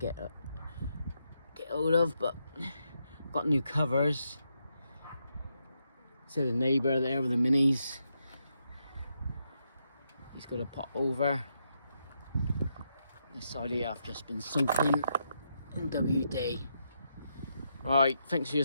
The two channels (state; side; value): inverted; both; correlation -0.81